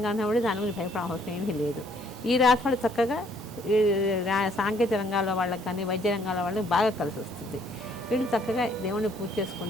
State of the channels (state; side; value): normal; both; correlation 0.64